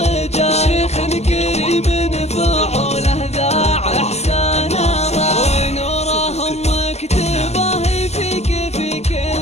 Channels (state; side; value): late; right; 0.32 ms